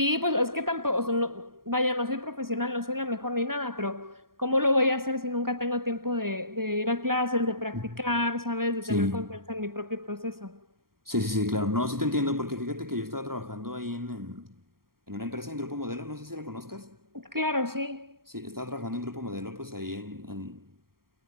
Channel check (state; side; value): late; left; 0.93 ms